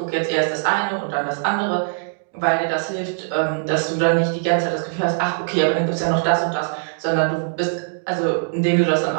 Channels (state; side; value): silent; left; digital silence